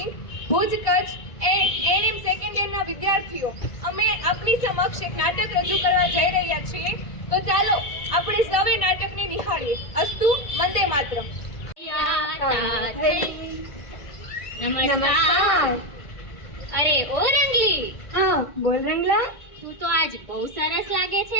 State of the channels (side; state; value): right; late; 1.9 ms